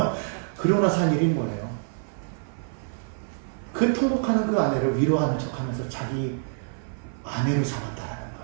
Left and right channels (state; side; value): silent; left; 56 dB below the other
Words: 그러고 나서 한 일이 뭐예요? 그 통곡하는 그 아내를 위로하는 척 하면서 자기 아내를 삼았다는